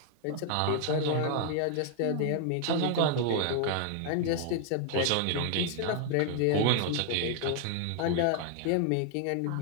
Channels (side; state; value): both; different; correlation 0.00